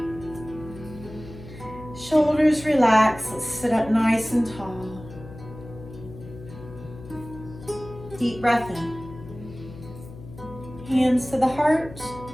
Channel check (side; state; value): left; noise; hum, 15 dB below the sound